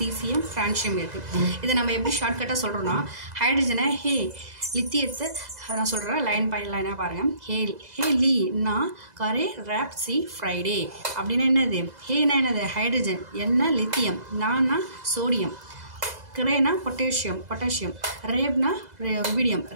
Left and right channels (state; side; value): late; left; 2.0 ms